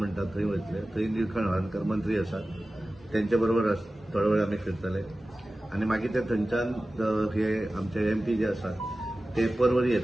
थंय वयतले थंय निळकंठ हळर्णकर मंत्री आसात तेंचे बरोबर थोडे वेळ आमी फिरतले आणि मागीर ते थंयच्यान हे आमचे MP जे आसात ते परवरी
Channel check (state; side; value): normal; both; correlation 0.96